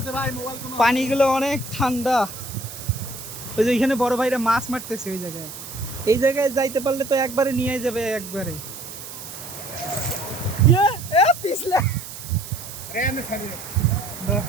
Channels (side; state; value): right; noise; hiss, 12 dB below the sound